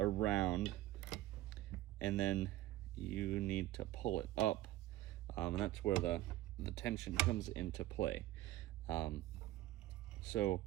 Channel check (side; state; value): left; quieter; 15.5 dB